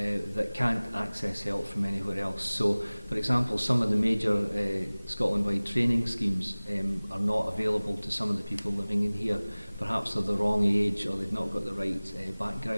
can't access help from anywhere else. So, for example, some of the major Scotland-wide training schemes are not available to some of the people living in here. Perhaps they're the wrong age or they've not got the right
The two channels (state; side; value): inverted; both; correlation -0.99